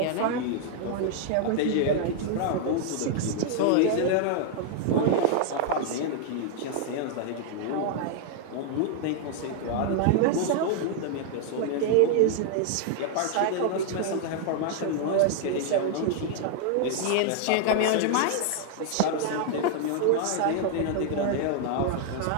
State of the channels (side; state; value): both; different; correlation 0.00